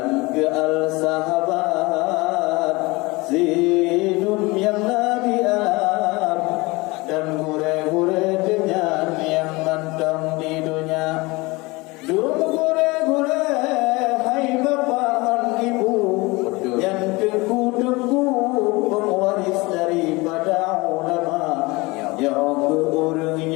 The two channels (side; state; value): right; quieter; 23.8 dB